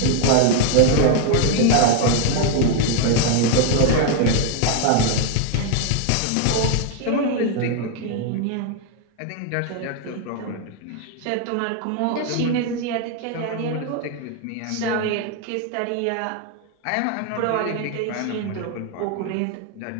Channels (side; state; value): both; different; correlation 0.01